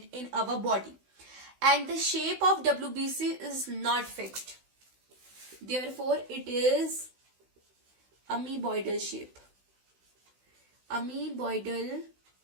in our body. And the shape of WBC is not fixed. Therefore, it is amoeboidal shape. Amoeboidal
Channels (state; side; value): late; left; 16 ms